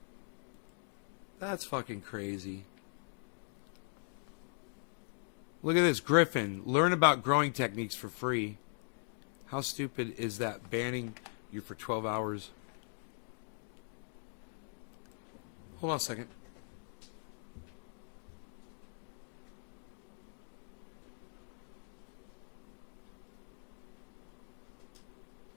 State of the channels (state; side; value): silent; right; digital silence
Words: That's fucking crazy. Look at this, Griffin. Learn about growing techniques for free. How stupid is that? Banning you for 12 hours. Hold on a second.